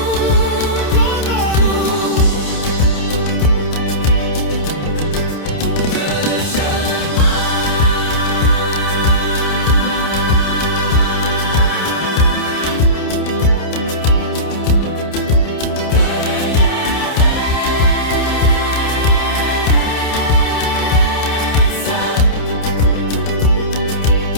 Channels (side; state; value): right; late; 28 ms